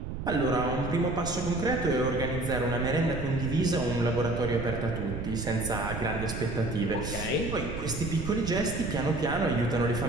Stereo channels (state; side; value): noise; right; rumble, 6 dB below the sound